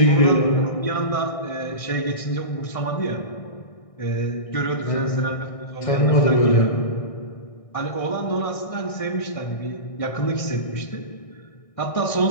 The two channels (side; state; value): right; late; 1.6 ms